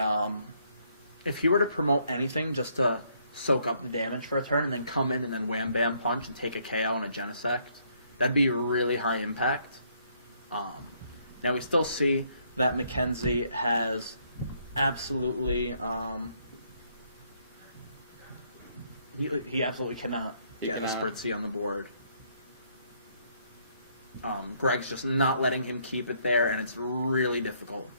if he were to promote anything just to soak up the damage for a turn, and then come in and then wham-bam punch and take a KO and a Genesect, that'd be really high impact. Now, we still see that Mackenzie has absolutely he absolutely cannot get a Spritzy on the board. Greg's just not letting him keep it there, and it's really difficult.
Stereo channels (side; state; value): both; inverted; correlation -0.69